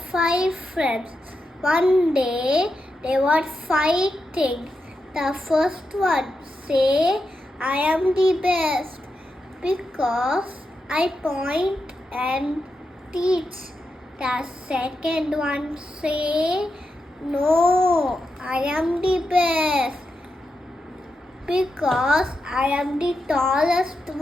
5 friends. One day, they were fighting. The first one say, I am the best because I point and teach. The second one say, no, I am the best because I am the tallest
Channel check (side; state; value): both; normal; correlation 0.87